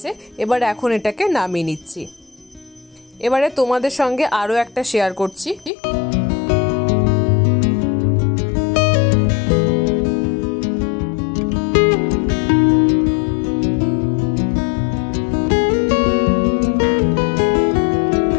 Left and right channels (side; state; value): right; drops out; at 5.7 s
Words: এবার এখন এটাকে নামিয়ে নিচ্ছি। এবারে তোমাদের সঙ্গে আরো একটা শেয়ার করছি।